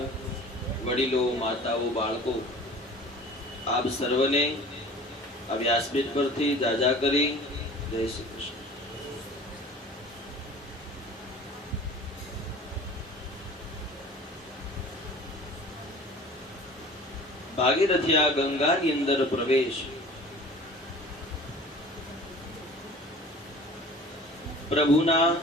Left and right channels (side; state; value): both; normal; correlation 0.44